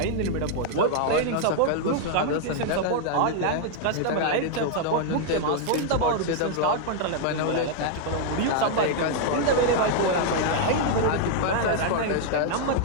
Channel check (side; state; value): both; different; correlation -0.01